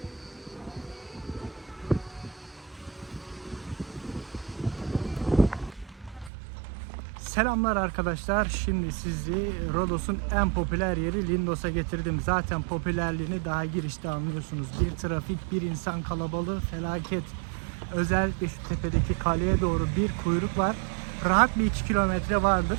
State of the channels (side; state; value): left; drops out; at 6.3 s